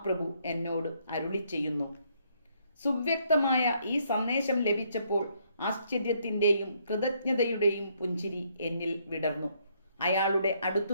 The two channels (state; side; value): inverted; both; correlation -0.70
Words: എന്നോട് അരുളി ചെയ്യുന്നു. സുവ്യക്തമായ ഈ സന്ദേശം ലഭിച്ചപ്പോൾ ആശ്ചര്യത്തിൻ്റെയും കൃതജ്ഞതയുടെയും പുഞ്ചിരി എന്നിൽ വിടർന്നു. അയാളുടെ